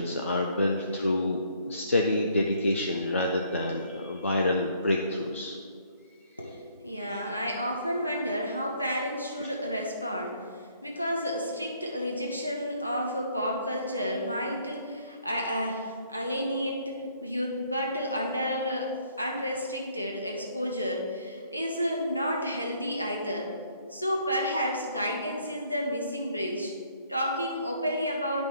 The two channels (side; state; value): both; inverted; correlation -0.65